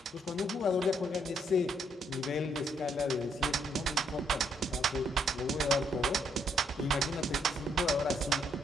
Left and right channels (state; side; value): normal; both; correlation 0.72